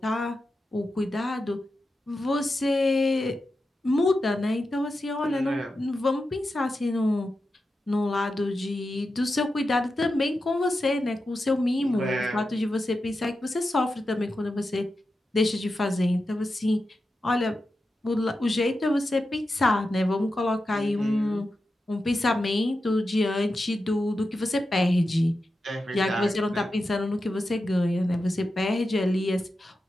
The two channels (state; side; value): normal; both; correlation 0.90